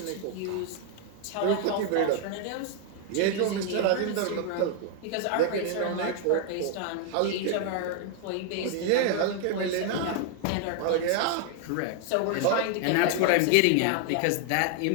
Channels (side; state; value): both; different; correlation 0.00